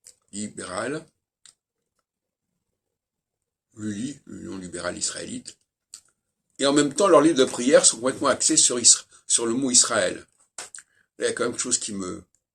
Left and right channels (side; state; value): both; identical; correlation 1.00